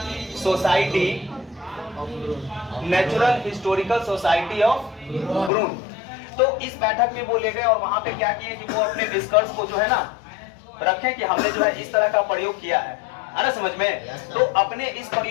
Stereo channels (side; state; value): right; drops out; at 5.5 s